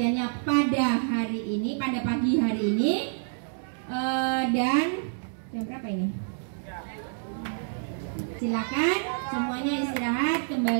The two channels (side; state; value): left; silent; digital silence